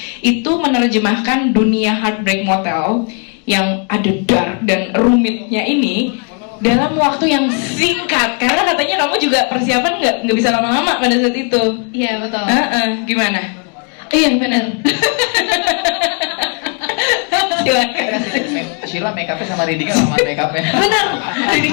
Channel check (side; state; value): right; quieter; 37.3 dB